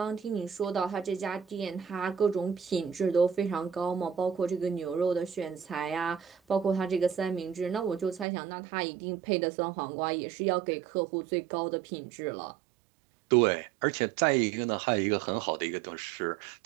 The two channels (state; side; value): drops out; left; at 8.2 s